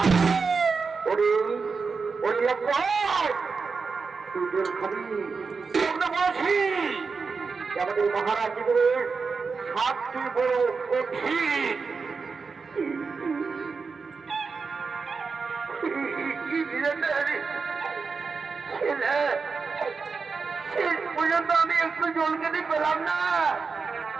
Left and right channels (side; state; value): left; quieter; 4.9 dB